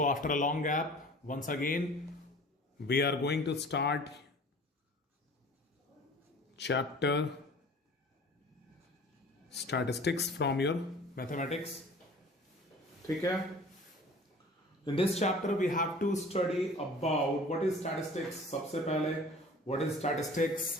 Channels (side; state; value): both; normal; correlation 0.45